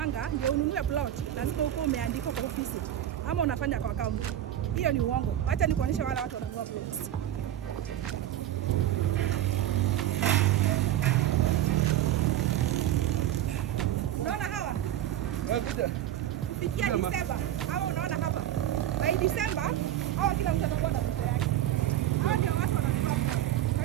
ndio ununue plot lazima uko umeandikwa kwa ofisi ama unafanya kwa account. Hiyo ni uongo. Acha nikuonyeshe wale watu wanunua plots. Unaona hawa? Kufikia Disemba. Hawa unaona hapa. By Disemba, hawa kila mtu atakuwa na pesa yake. Hawa ndio watu wananunua plot. Kwa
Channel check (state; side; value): quieter; left; 12.2 dB